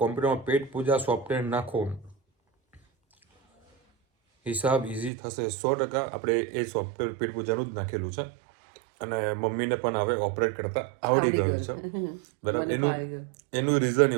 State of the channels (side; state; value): left; drops out; at 5.1 s